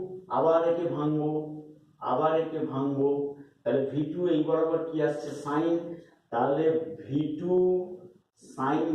আবার একে ভাঙবো, আবার একে ভাঙবো, তাহলে v2 এই বরাবর কি আসছে sin, তাহলে v2 sin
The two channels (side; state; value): both; identical; correlation 1.00